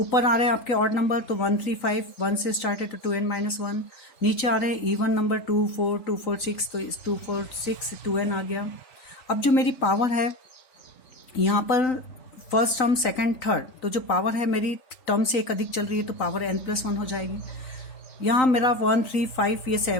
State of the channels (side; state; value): right; late; 3.9 ms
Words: आ रहे हैं आपके ऑड नंबर तो 1 3 5, 1 से स्टार्ट है तो 2n-1। नीचे आ रहे हैं इवन नंबर 2 4 2 4 6, तो इस 2 4 6 2n आ गया। अब जो मेरी पावर है यहाँ पर फर्स्ट टर्म सेकंड थर्ड, तो जो पावर है मेरी टर्म से एक अधिक चल रही है तो पावर n+1 हो जाएगी। यहाँ मेरा 1 3 5, ये